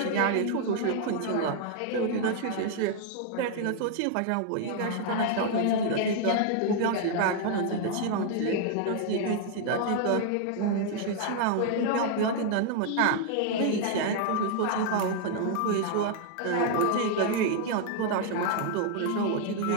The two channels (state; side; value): different; both; correlation 0.00